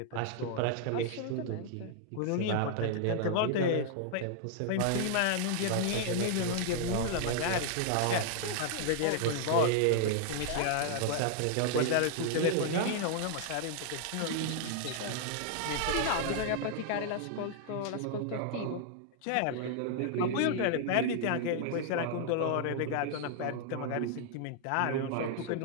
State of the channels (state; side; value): different; both; correlation 0.00